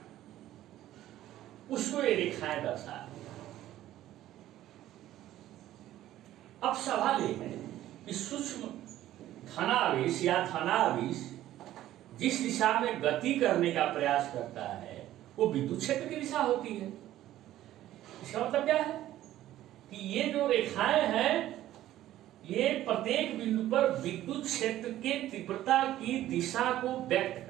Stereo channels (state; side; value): quieter; left; 13.7 dB